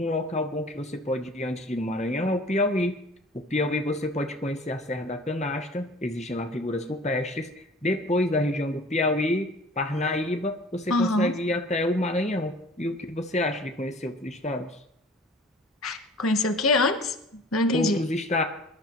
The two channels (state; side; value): normal; both; correlation 0.46